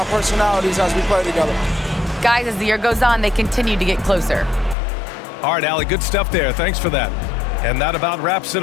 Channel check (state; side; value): drops out; right; at 4.8 s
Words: personalities as we play together. Guys, as the year goes on, they continue to get closer. All right, Allie, good stuff there. Thanks for that. And that about wraps it